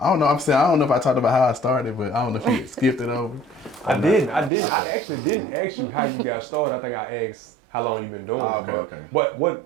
don't know. I don't know if I talked about how I started, but I don't know if you skipped it over. I did. Okay. I actually didn't ask you how you got started. I think I asked how long you been doing it. Okay.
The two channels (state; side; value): drops out; left; at 4.5 s